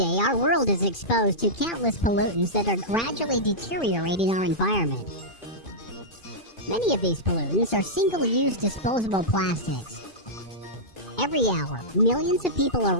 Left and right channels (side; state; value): right; late; 2.4 ms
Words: our world is exposed to countless pollutants that are gradually deteriorating our environment. Many of these pollutants are single-use disposable plastics. Every hour, millions of people